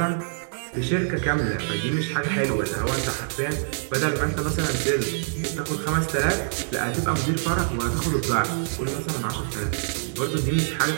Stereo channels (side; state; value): left; silent; 62 dB below the other